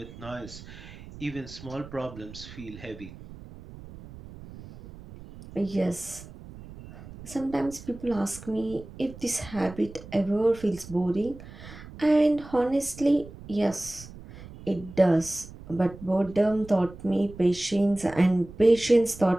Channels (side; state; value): right; noise; rumble, 16 dB below the sound